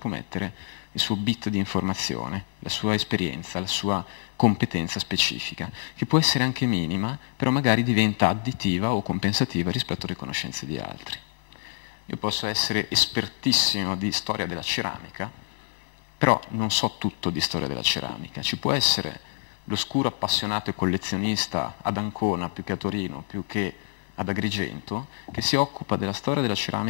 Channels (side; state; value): right; silent; 60 dB below the other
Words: mettere il suo bit di informazione, la sua esperienza, la sua competenza specifica, che può essere anche minima, però magari diventa additiva o compensativa rispetto alle conoscenze di altri. Io posso essere espertissimo di storia della ceramica, però non so tutto di storia della ceramica. Ci può essere l'oscuro appassionato e collezionista ad Ancona, più che a Torino, più che ad Agrigento, che si occupa della storia della